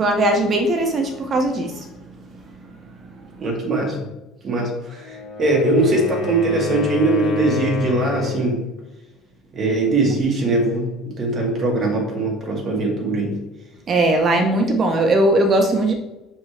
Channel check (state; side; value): normal; both; correlation 0.43